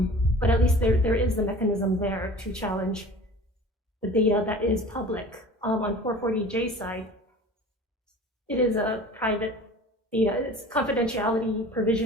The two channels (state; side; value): normal; both; correlation 0.42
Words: But at least there is the mechanism there to challenge the data that is public. On 440J side, it is a private data. It's confidentiality